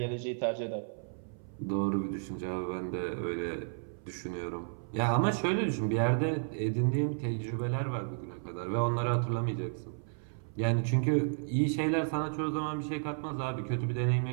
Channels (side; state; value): left; silent; 56 dB below the other